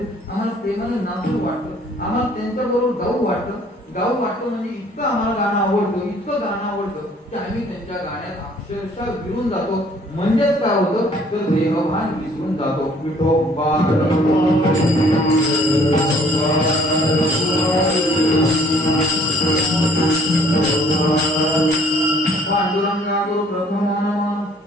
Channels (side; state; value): both; normal; correlation 0.58